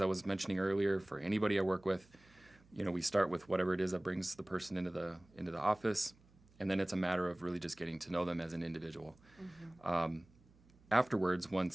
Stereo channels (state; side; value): noise; right; hum, 28 dB below the sound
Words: I was mentioning earlier for anybody I work with. We start with whatever it is that brings the person into the office, and then it's a matter of really just getting to know them as an individual. Afterwards,